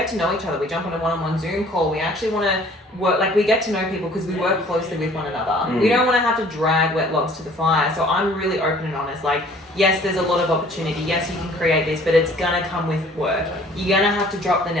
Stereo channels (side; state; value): both; normal; correlation 0.54